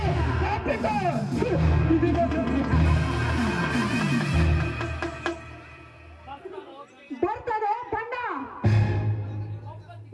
ತಪ್ಪಿಕೋ. ಬರ್ತಾನೆ ಬಣ್ಣ.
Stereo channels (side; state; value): both; identical; correlation 1.00